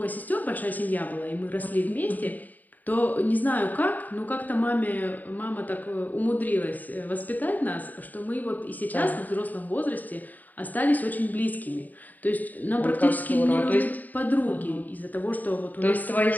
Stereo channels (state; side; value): late; right; 0.083 ms